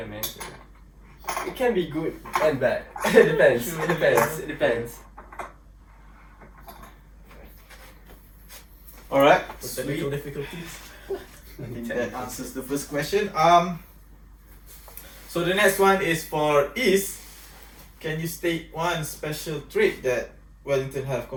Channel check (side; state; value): both; identical; correlation 1.00